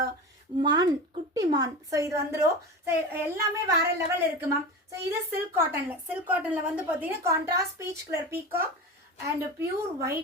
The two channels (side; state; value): both; normal; correlation 0.28